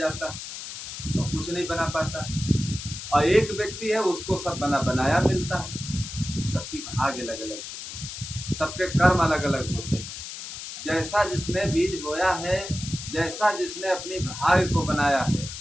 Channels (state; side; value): noise; left; hiss, 9 dB below the sound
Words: है तो कुछ नहीं बना पाता। और एक व्यक्ति है उसको सब बनाया मिलता है। सबकी भाग्य अलग अलग होते हैं, सबके कर्म अलग अलग होते हैं। जैसा जिसने बीज बोया है, जैसा जिसने अपनी भाग्य को बनाया है,